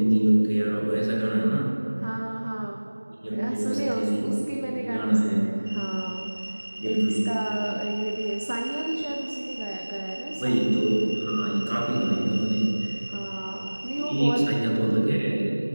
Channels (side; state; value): both; inverted; correlation -1.00